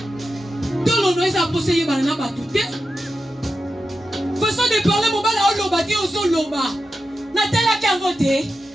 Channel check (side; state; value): both; normal; correlation 0.90